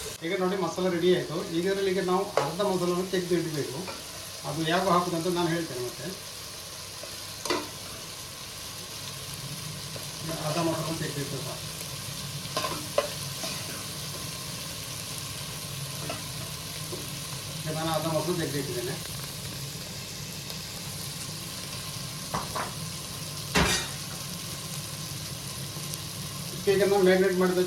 ಈಗ ನೋಡಿ ಮಸಾಲೆ ರೆಡಿ ಆಯಿತು. ಈಗ ನಾವು ಅರ್ಧ ಮೊದಲನ್ನು ತೆಗೆದು ಇಡಬೇಕು. ಅದು ಯಾವ ಹಾಕೋದಂತ ನಾನು ಹೇಳ್ತೇನೆ. ಮತ್ತೆ ಅರ್ಧ ಮೊದಲನ್ನು ತೆಗೆದಿಟ್ಟು ನಾನು ಅರ್ಧ ಮೊದಲು ತೆಗೆದಿಟ್ಟಿದ್ದೇನೆ. ಈಗ ನಾನು ಮ್ಯಾರಿನೇಟ್ ಮಾಡಿದ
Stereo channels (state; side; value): identical; both; correlation 1.00